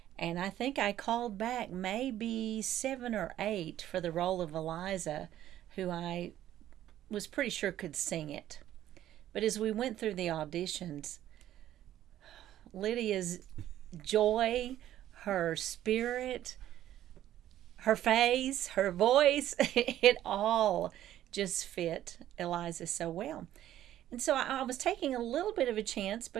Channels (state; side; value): quieter; left; 12.5 dB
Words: And I think I called back maybe 7 or 8 for the role of Eliza, who I was pretty sure could sing it. But as we went through the auditions, Lydia's joy, her spirit, her face, her voice, it all just fit Eliza so well. And so I was taking a little bit of a chance